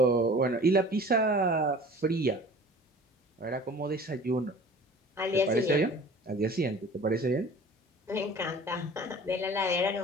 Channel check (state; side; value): normal; both; correlation 0.44